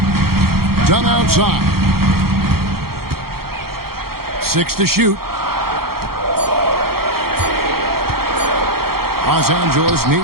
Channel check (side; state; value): left; late; 0.94 ms